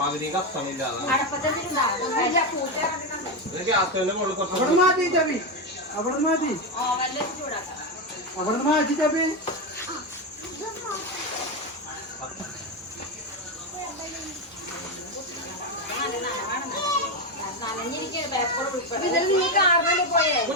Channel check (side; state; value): both; normal; correlation 0.10